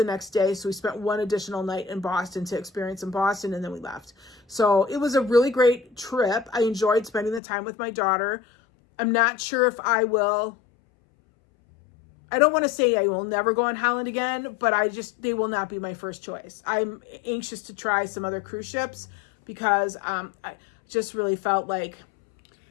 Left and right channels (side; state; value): right; drops out; at 7.4 s